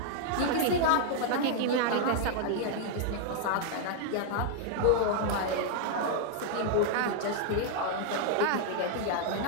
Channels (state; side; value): different; both; correlation 0.00